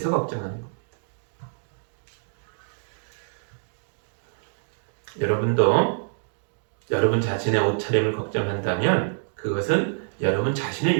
걱정하는 겁니다. 여러분도 여러분 자신의 옷차림을 걱정한다면 그것은 여러분 자신을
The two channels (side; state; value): left; silent; digital silence